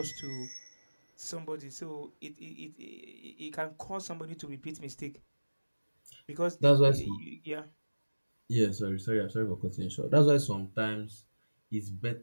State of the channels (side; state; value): both; inverted; correlation -1.00